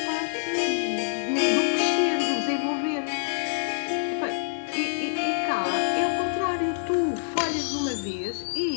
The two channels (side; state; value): right; silent; digital silence